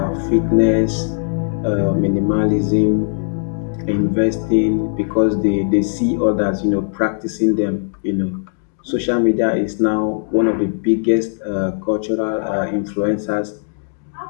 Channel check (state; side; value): silent; right; 62 dB below the other